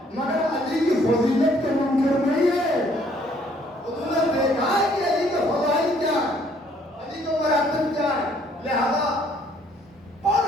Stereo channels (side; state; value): both; normal; correlation 0.63